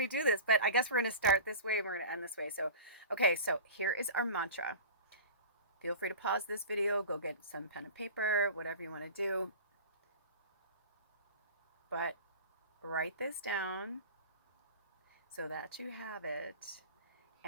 do this, but I guess we're going to start this way and we're going to end this way. So, okay, so here is our mantra. Feel free to pause this video, go get some pen and paper, whatever you want to do. But write this down so that you have it,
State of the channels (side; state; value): both; inverted; correlation -0.35